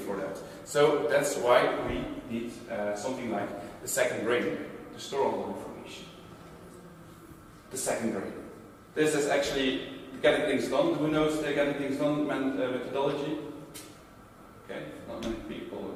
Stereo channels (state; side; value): identical; both; correlation 1.00